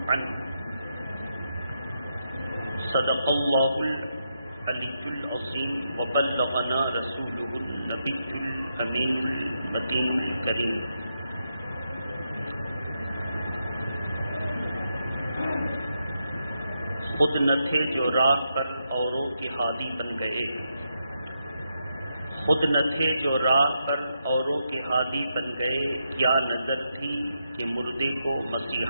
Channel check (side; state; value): both; inverted; correlation -0.84